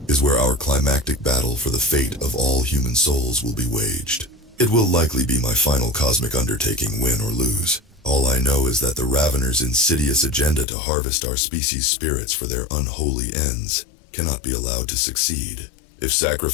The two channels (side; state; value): right; drops out; at 10.7 s